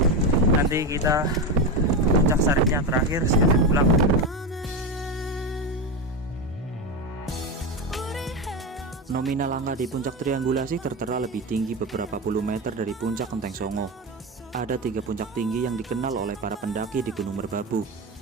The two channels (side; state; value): both; normal; correlation 0.17